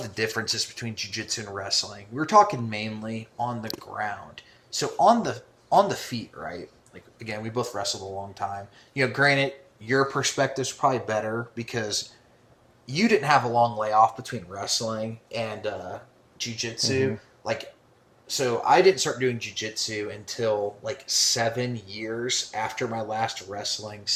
the differences between jiu-jitsu and wrestling. We were talking mainly on the ground. So on the feet, right? Like again, we both wrestled a long time. You know, granted, your perspective's probably better because you didn't have a long layoff between wrestling and jiu-jitsu. Mm-hmm. Like, so I didn't start doing jiu-jitsu until like 7 years after my last wrestling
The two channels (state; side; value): identical; both; correlation 1.00